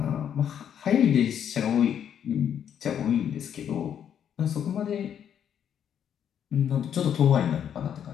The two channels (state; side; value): quieter; right; 9.0 dB